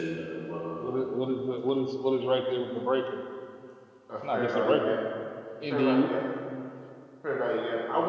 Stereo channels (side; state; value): both; identical; correlation 1.00